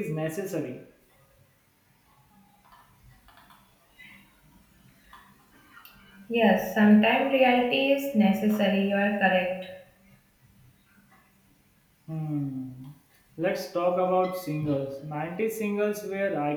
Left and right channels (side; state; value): both; identical; correlation 1.00